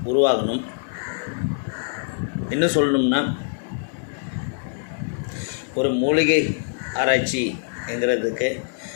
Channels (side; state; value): right; silent; digital silence